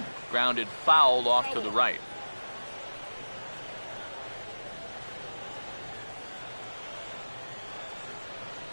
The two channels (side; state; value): both; inverted; correlation -1.00